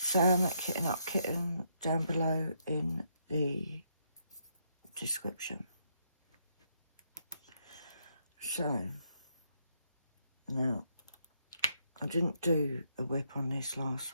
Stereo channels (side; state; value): both; inverted; correlation -0.75